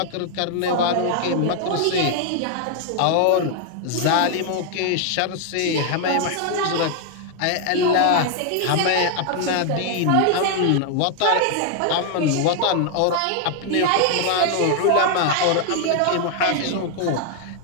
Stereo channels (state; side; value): different; both; correlation 0.00